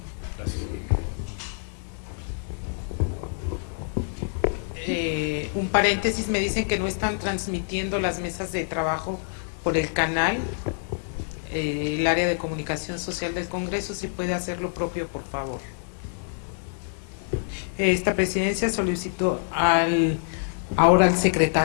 Gracias. Un paréntesis, me dicen que no están transmitiendo las mesas de trabajo por el canal. el área de comunicación social del Congreso, si puede hacer lo propio, por favor. Esta presidencia solicitó ahora al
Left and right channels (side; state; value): right; silent; 61 dB below the other